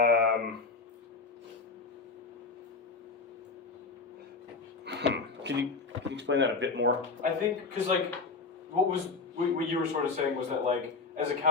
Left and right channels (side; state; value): right; quieter; 4.2 dB